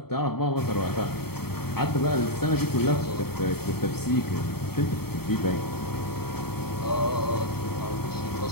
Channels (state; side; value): late; right; 0.95 ms